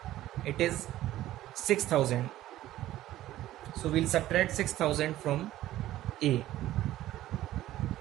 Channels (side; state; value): left; quieter; 14.5 dB